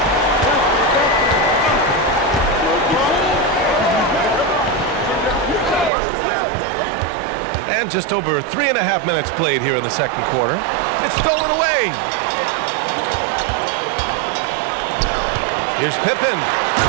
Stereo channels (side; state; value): left; drops out; at 5.9 s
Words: And just over 3.5 minutes played here in the second quarter. It's stolen away. Here's Pippen.